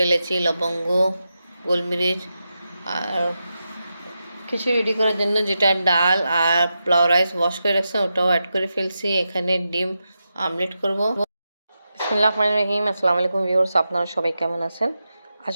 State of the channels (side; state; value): both; inverted; correlation -0.89